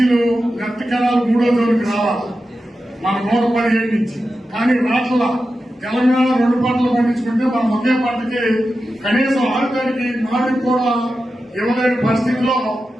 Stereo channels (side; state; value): both; normal; correlation 0.91